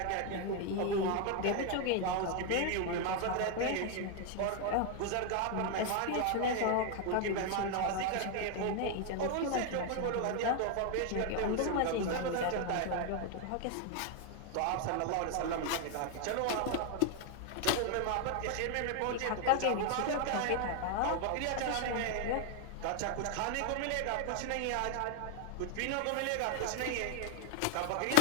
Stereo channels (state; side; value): different; both; correlation 0.00